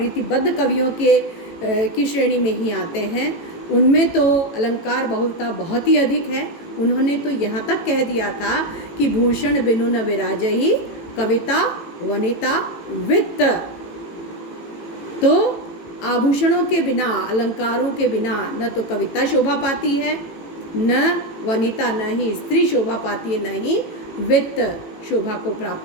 कवियों की श्रेणी में ही आते हैं, उनमें तो अलंकार बहुलता बहुत ही अधिक है। उन्होंने तो यहाँ तक कह दिया था कि भूषण बिनु न विराजहि कविता वनिता वित्त। तो आभूषणों के बिना, अलंकारों के बिना न तो कविता शोभा पाती है, न वनिता, न ही स्त्री शोभा पाती है, न ही वित्त शोभा को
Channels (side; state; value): right; late; 18 ms